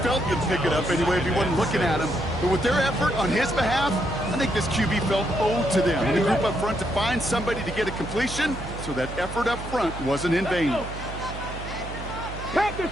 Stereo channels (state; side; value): noise; right; hum, 9 dB below the sound